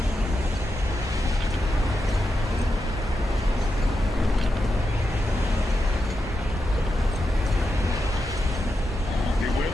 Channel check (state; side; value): normal; both; correlation 0.87